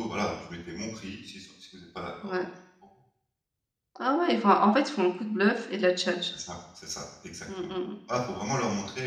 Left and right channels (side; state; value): both; identical; correlation 1.00